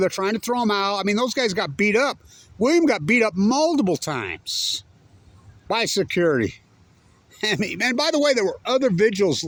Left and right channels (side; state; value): both; identical; correlation 1.00